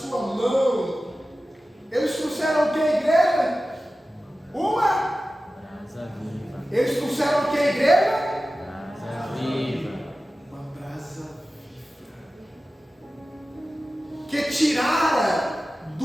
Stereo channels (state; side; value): normal; both; correlation 0.95